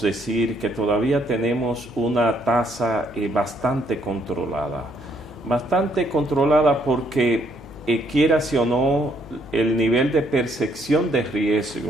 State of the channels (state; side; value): noise; left; hum, 19 dB below the sound